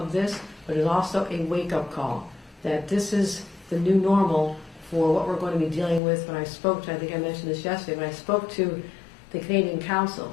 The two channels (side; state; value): right; drops out; at 6.0 s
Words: this, but it's also a wake-up call that this is the new normal for what we're going to be dealing with. When I spoke to, I think I mentioned this yesterday, when I spoke to the Canadian